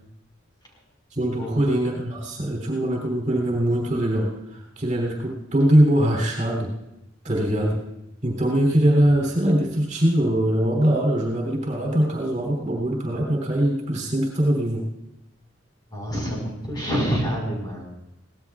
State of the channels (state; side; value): normal; both; correlation 0.85